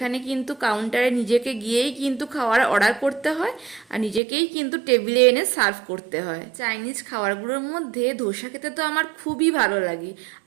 কিন্তু কাউন্টারে নিজেকে গিয়েই কিন্তু খাওয়ার অর্ডার করতে হয় আর নিজেকেই কিন্তু টেবিলে এনে সার্ভ করতে হয়। চাইনিজ খাবারগুলোর মধ্যে ধোসা খেতে তো আমার খুবই ভালো লাগে।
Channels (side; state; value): left; drops out; at 4.2 s